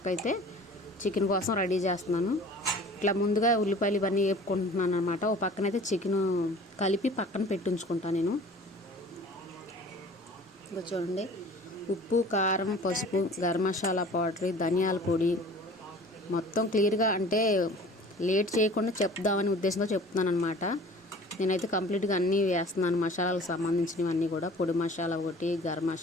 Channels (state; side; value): normal; both; correlation 0.45